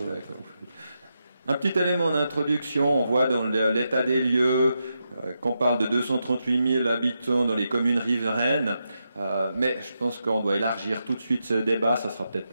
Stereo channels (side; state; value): both; inverted; correlation -0.86